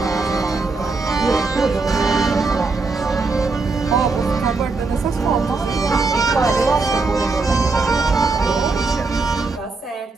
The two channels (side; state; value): left; quieter; 3.9 dB